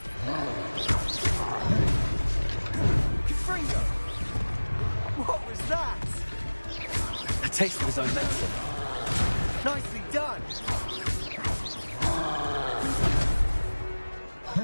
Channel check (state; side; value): inverted; both; correlation -1.00